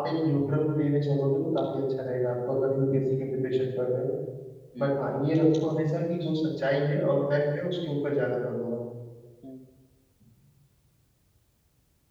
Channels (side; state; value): both; identical; correlation 1.00